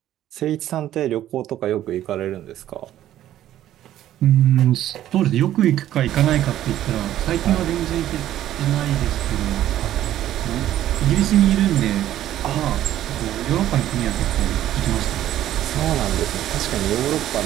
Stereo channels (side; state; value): left; quieter; 12.6 dB